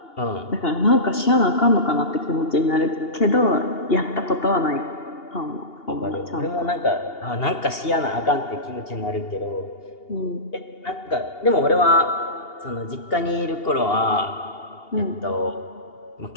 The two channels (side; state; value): right; late; 2.8 ms